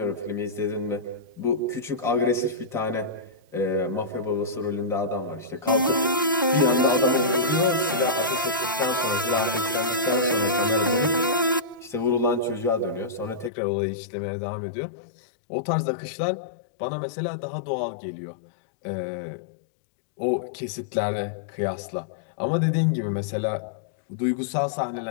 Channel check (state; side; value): drops out; right; at 13.5 s